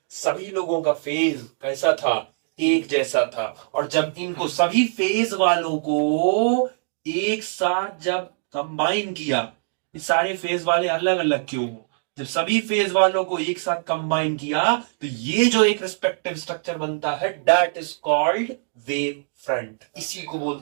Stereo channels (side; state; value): left; silent; digital silence